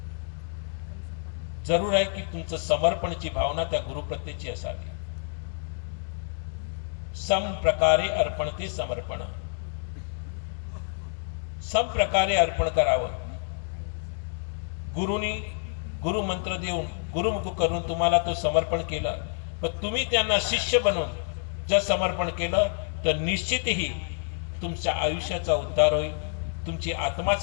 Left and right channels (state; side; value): silent; right; digital silence